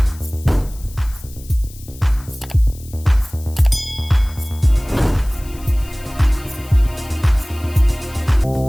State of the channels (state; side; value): noise; left; hiss, 21 dB below the sound